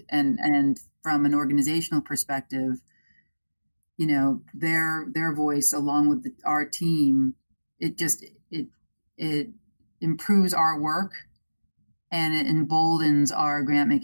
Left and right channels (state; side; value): inverted; both; correlation -1.00